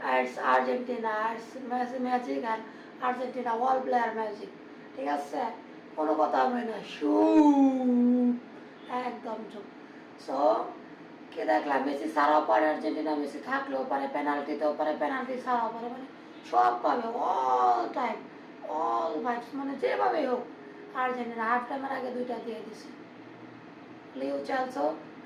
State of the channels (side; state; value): both; identical; correlation 1.00